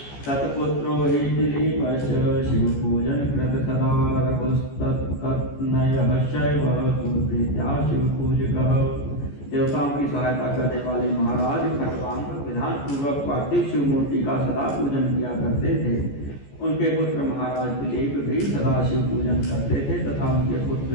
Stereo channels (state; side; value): late; right; 14 ms